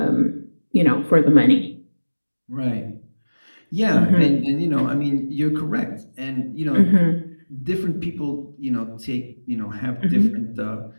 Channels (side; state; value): both; inverted; correlation -1.00